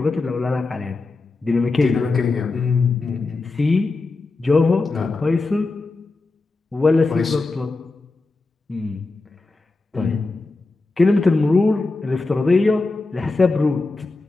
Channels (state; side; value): quieter; right; 3.5 dB